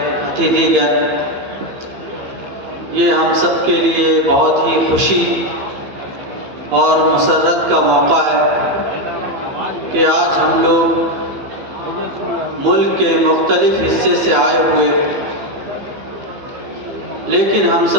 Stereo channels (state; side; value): late; left; 15 ms